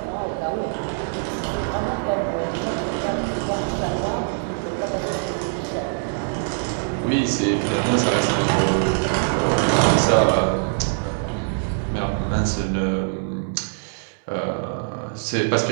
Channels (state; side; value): silent; left; digital silence